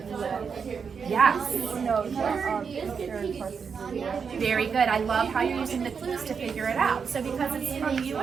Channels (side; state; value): left; quieter; 6.1 dB